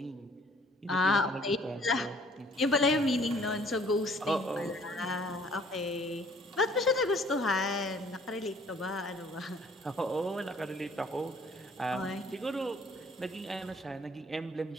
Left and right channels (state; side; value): normal; both; correlation 0.57